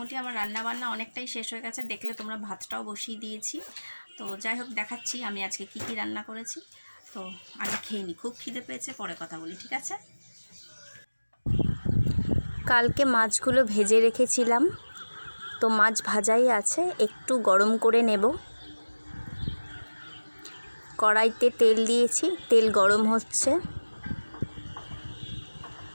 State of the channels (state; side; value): inverted; both; correlation -1.00